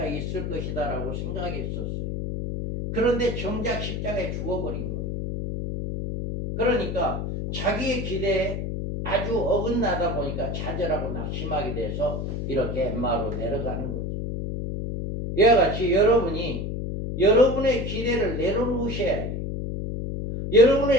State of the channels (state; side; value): noise; left; hum, 3 dB below the sound